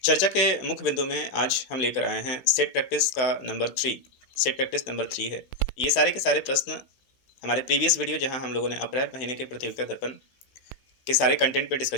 चर्चा के मुख्य बिंदु में आज हम लेकर आए हैं सेट प्रैक्टिस का नंबर 3। सेट प्रैक्टिस नंबर 3 है। ये सारे के सारे प्रश्न हमारे प्रीवियस वीडियो जहां हम लोगों ने अप्रैल महीने के प्रतियोगिता दर्पण के सारे कंटेंट पे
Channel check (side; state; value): right; late; 15 ms